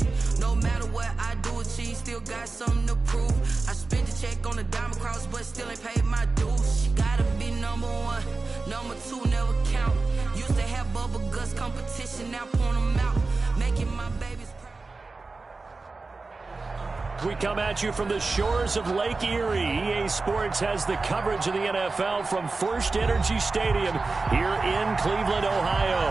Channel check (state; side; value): quieter; left; 3.8 dB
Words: No matter what I do achieve, still got something to prove. I spent the check on the diamond cross, but still ain't paid my dues. She gotta be number one, number two never count. Used to have bubble guts competition, now point them out. Making my babies proud. We come at you from the shores of Lake Erie. EA Sports has the coverage of the NFL from First Energy Stadium here in Cleveland,